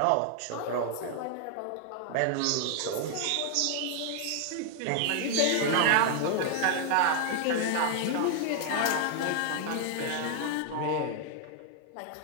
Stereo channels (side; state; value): both; different; correlation 0.00